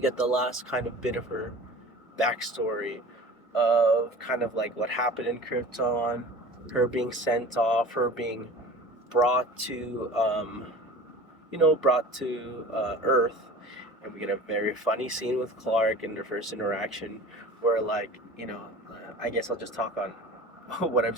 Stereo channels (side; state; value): both; normal; correlation 0.40